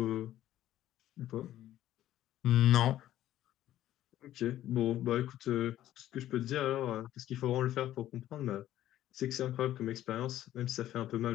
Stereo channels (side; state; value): right; quieter; 13.1 dB